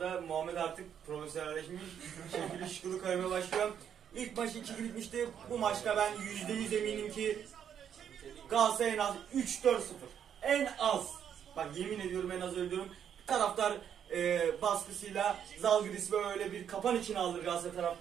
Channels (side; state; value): left; quieter; 8.7 dB